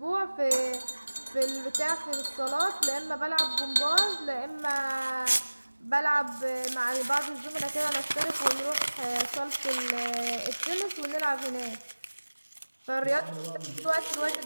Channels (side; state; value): both; inverted; correlation -1.00